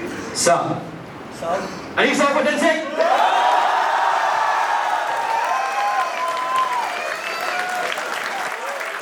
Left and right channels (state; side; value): identical; both; correlation 1.00